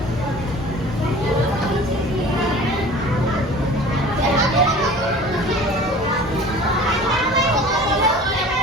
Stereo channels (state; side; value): normal; both; correlation 0.43